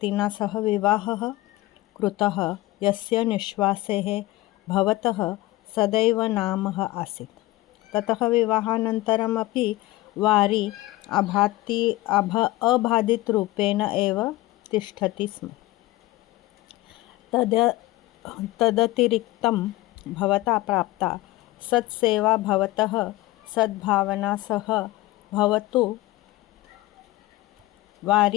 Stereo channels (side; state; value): right; quieter; 18.3 dB